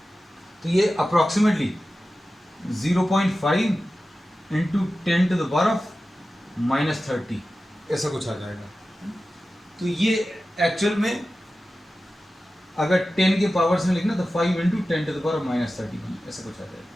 तो ये approximately 0.5 into 10 to the power -30 ऐसा कुछ आ जाएगा. तो ये एक्चुअल में अगर 10 के पावर्स में लिखना तो 5 इंटू 10 to the power -30 ऐसा कुछ आ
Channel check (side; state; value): both; normal; correlation 0.94